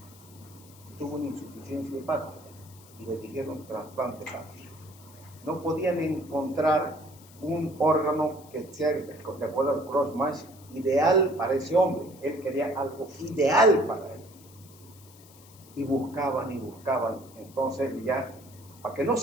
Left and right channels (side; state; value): left; noise; hiss, 23 dB below the sound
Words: tuvo una insuficiencia hepática y le dijeron trasplante hepático. No podían encontrar un órgano que sea, de acuerdo al cross-match, ideal para ese hombre. Él quería algo ideal para él. Y buscaban. Entonces ya, para que no